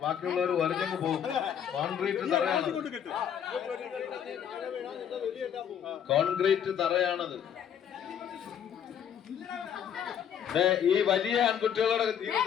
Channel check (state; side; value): quieter; right; 8.8 dB